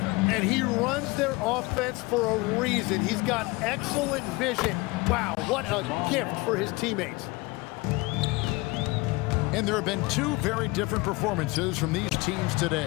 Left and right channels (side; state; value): right; quieter; 23.4 dB